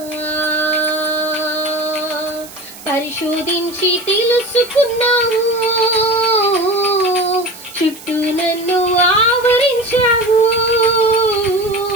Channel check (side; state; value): right; noise; hiss, 17 dB below the sound